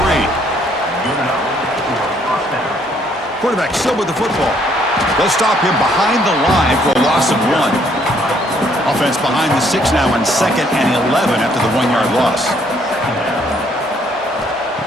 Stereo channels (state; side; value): normal; both; correlation 0.66